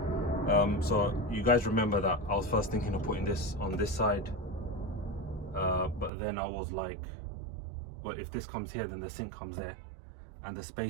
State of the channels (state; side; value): drops out; left; at 6.1 s